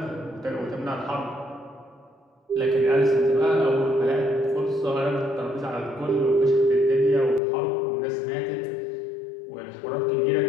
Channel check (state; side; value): drops out; right; at 7.4 s